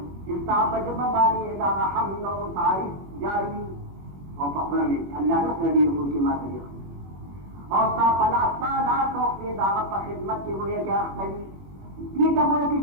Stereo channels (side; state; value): left; late; 21 ms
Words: چې صاحب جبه باندې دا حمد او تعریف جاری او په خپل الله رسول دی رسول کی ما ته اور صاحب اللہ لا توفی دعوت پر خدمت کی ہوئے کہ اختلی یہ تب ہوئے کہ